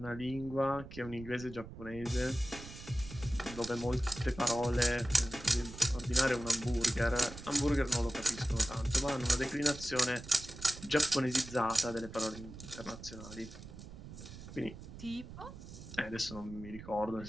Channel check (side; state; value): right; noise; rumble, 14 dB below the sound